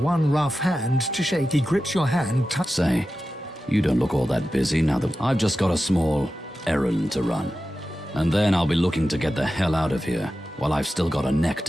rough hand to shake. He grips your hand. Say, you don't look all that busy now that I've just got a small errand to run. And then I'll be looking to get the hell out of here while I've still got a neck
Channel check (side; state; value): both; normal; correlation 0.93